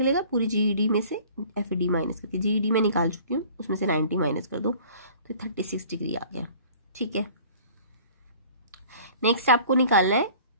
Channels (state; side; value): inverted; both; correlation -0.48